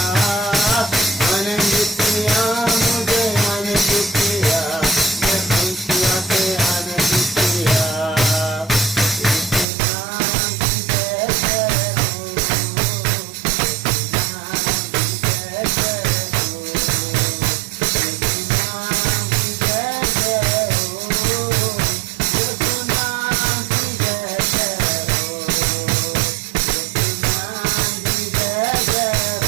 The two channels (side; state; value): left; drops out; at 9.7 s